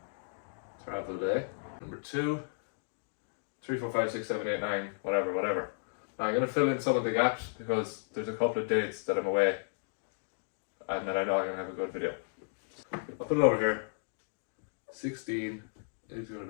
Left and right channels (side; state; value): right; silent; digital silence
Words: travel day. Number 2, 3, 4, 5, 6, 7, 8, 9, whatever. Now I'm going to fill in some of the gaps because there's a couple of dates that I'm away. And then I know I'm going to have a good video. I'll put it over here. 16 is going